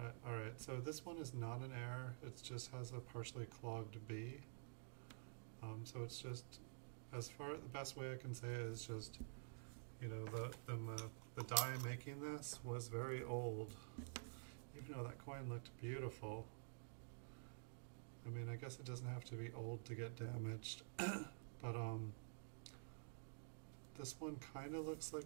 All right, so this one is not an air. It just has a partially clogged B. So it's just, the best way I can say it is just, you know, the die making this was very old. Even though that coin looked beautiful. I mean, I guess it doesn't have to be old to get damaged, but this one kind of looks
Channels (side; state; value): left; silent; digital silence